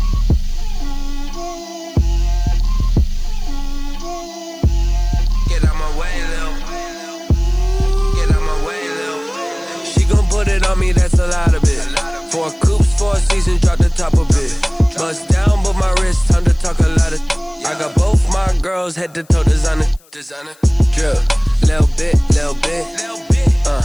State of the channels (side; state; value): left; noise; hiss, 30 dB below the sound